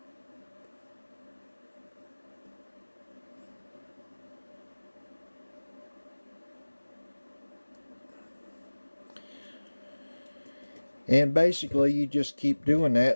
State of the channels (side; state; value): both; inverted; correlation -1.00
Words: And basically you just keep doing